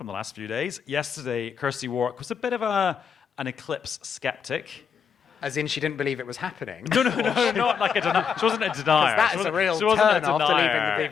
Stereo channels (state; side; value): quieter; right; 6.7 dB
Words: the last few days. Yesterday, Kirsty Warwick was a bit of an eclipse skeptic. As in, she didn't believe it was happening. No, not like a denier. She wasn't a denier. That is a real turn after leaving